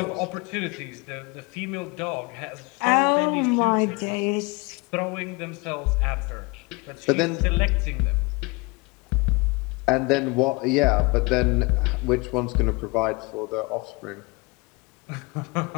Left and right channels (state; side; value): quieter; right; 26.8 dB